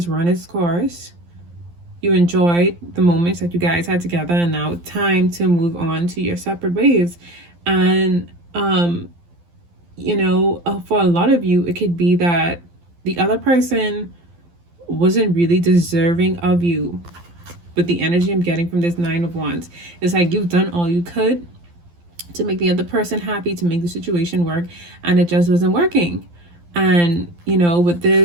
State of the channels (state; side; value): late; left; 12 ms